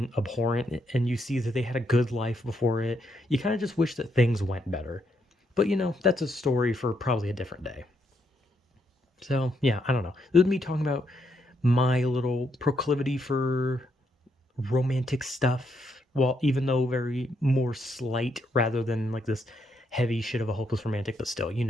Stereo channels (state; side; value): normal; both; correlation 0.77